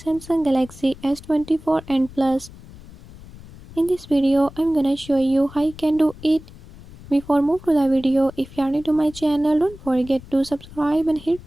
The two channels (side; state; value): left; noise; rumble, 19 dB below the sound